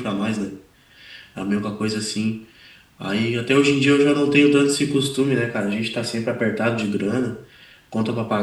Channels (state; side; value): identical; both; correlation 1.00